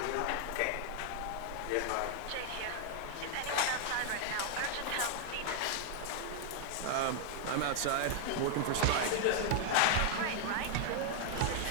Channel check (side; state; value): both; different; correlation 0.00